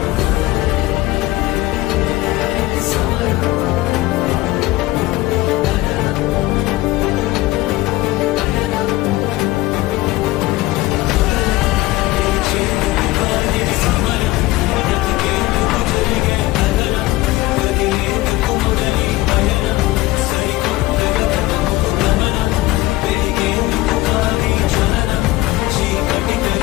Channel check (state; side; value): quieter; right; 18.5 dB